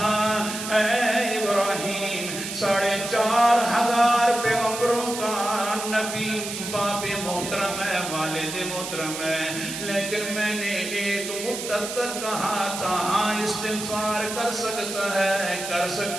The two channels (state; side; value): noise; right; hiss, 7 dB below the sound